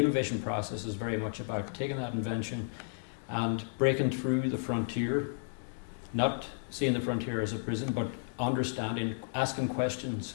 process is very much about taking that invention and breaking through the frontier, not seeing the frontier as a prison, but understanding, asking questions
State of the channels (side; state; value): right; silent; digital silence